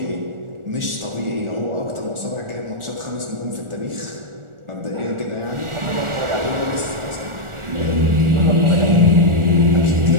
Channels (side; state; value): left; late; 1.4 ms